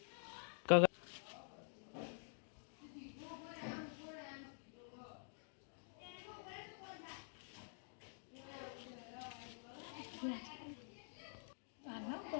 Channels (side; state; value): right; silent; digital silence